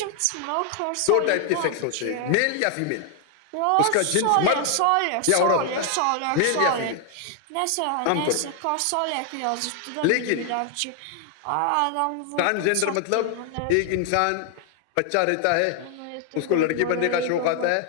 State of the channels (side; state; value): both; different; correlation 0.00